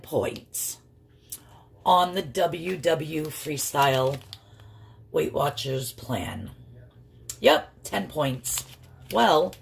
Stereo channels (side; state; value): both; identical; correlation 1.00